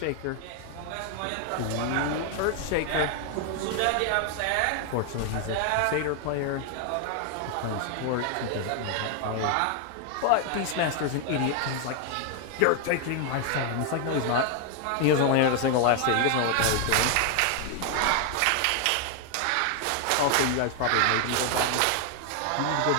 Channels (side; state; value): both; different; correlation 0.00